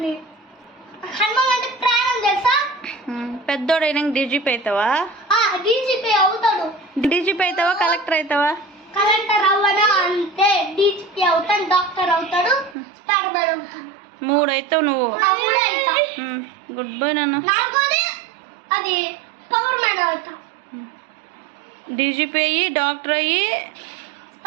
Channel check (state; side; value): drops out; left; at 12.8 s